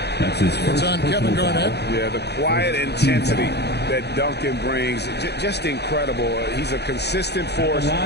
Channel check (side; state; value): right; late; 0.48 ms